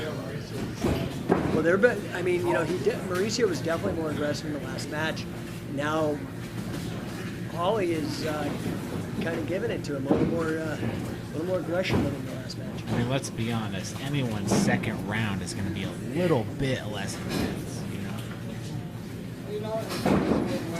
Well, I mean, you know, Mauricio was definitely more aggressive in the last match. And now Holly is kind of giving it to him, a little more aggression than in the last match. I mean, let's be honest. Anyone's second round is going to be a little bit less intense, you know? You know, it goes both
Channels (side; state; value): both; identical; correlation 1.00